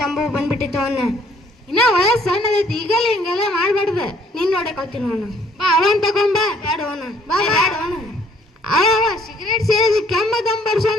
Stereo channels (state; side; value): normal; both; correlation 0.62